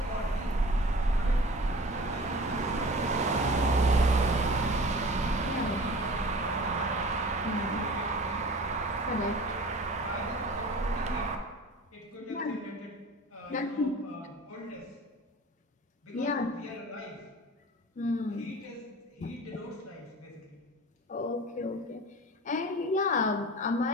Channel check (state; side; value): normal; both; correlation 0.41